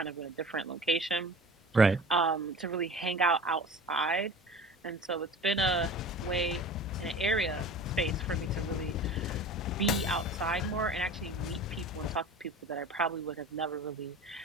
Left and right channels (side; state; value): both; normal; correlation 0.38